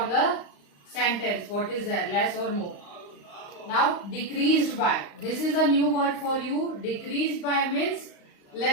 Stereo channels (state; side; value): late; right; 35 ms